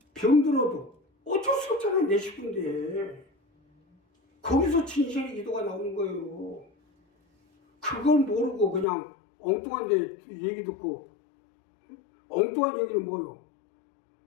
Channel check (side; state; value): right; drops out; at 8.8 s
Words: 병들어도 어쩔 수 없잖아요. 내 식구인데 거기서 진실의 기도가 나오는 거예요. 그걸 모르고 그냥 엉뚱한 데 얘기 듣고, 엉뚱한 얘기는 뭐요?